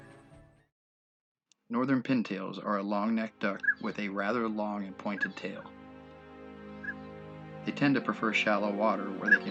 Northern pintails are a long-necked duck with a rather long and pointed tail. They tend to prefer shallow water where they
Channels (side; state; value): both; identical; correlation 1.00